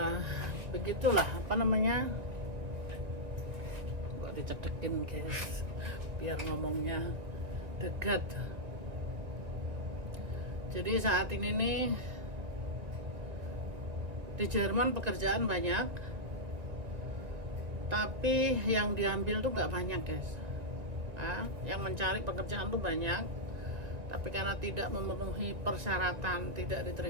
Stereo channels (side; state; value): left; late; 1.9 ms